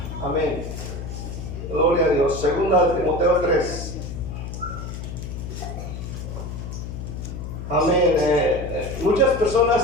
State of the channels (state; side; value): noise; left; hum, 8 dB below the sound